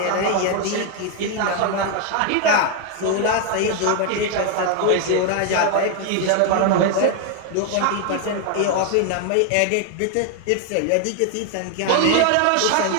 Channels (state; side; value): different; both; correlation 0.01